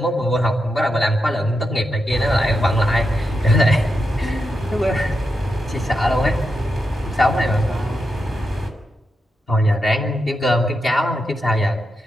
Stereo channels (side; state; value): both; normal; correlation 0.86